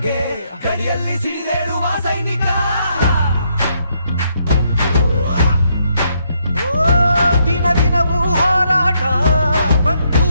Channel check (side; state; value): both; inverted; correlation -0.75